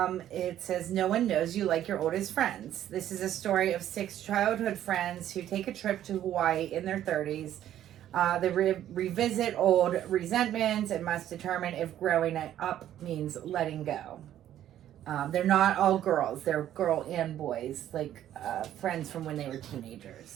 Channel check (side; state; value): left; quieter; 11.7 dB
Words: It says, no one knows you like your oldest friends. This is a story of 6 childhood friends who take a trip to Hawaii in their 30s They revisit old resentments and must determine if growing up means letting go. They're not all girls. They're girl and boys, like friends from when they were